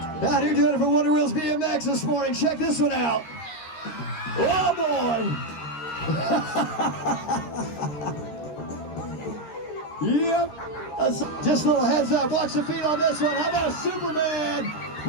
here doing it for Wonder Wheels BMX this morning. Check this one out. Oh boy! Yep. Just a little heads up. Watch the feet on this one. How about a Superman?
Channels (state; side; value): late; right; 13 ms